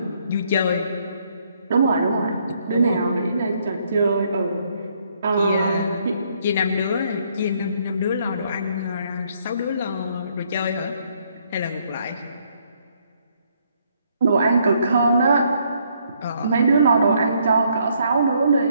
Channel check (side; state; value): both; inverted; correlation -0.69